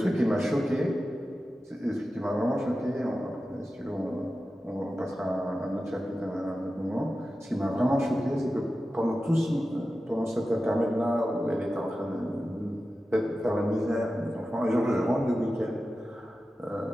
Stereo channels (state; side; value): normal; both; correlation 0.93